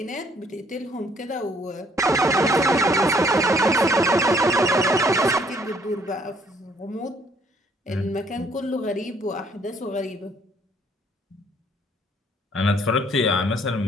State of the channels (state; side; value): normal; both; correlation 0.64